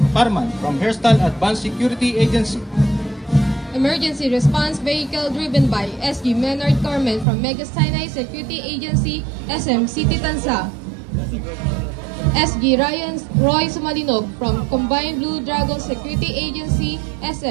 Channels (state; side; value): drops out; left; at 7.2 s